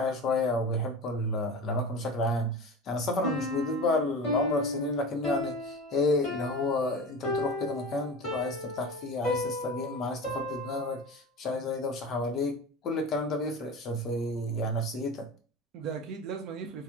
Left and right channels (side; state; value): both; normal; correlation 0.31